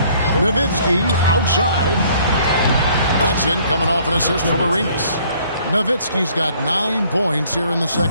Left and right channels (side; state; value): both; inverted; correlation -0.60